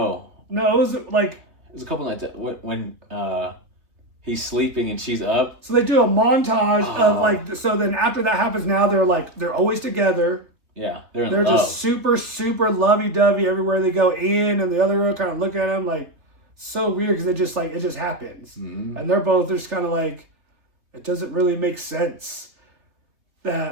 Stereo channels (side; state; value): left; late; 3.2 ms